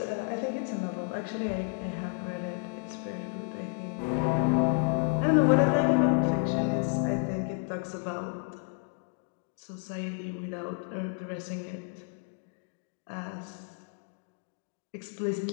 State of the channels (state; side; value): quieter; right; 33.3 dB